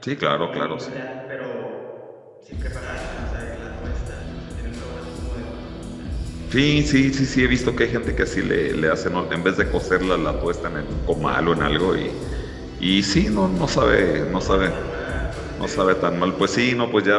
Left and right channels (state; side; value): identical; both; correlation 1.00